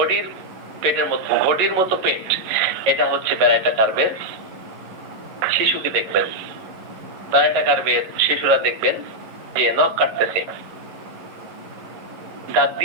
পেটের মতো, ঘটির মতো পেট, এটা হচ্ছে ব্যারাটা কার্ভের শিশুকে দেখবেন। ব্যারাটা কার্ভের শিশুরা দেখবেন যে নখ কাটতেছে, দাঁত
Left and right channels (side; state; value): left; late; 11 ms